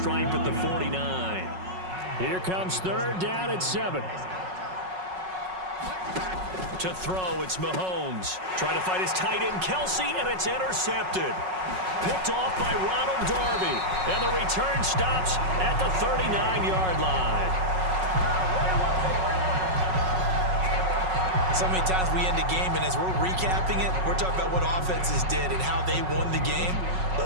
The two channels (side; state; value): left; late; 5.4 ms